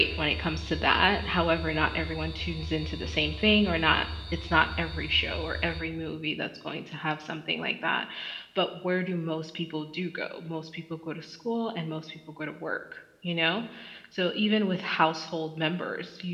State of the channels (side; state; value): both; identical; correlation 1.00